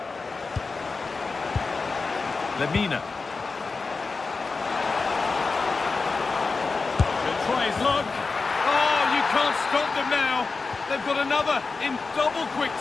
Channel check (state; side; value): quieter; right; 4.2 dB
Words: Lemina. He'll try his luck. Oh, you can't stop them now. They've got another in double quick